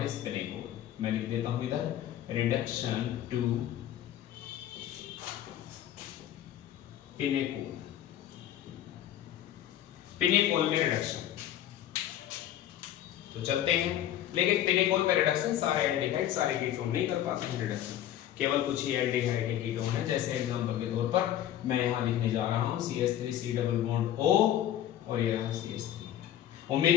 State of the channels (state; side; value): quieter; right; 11.7 dB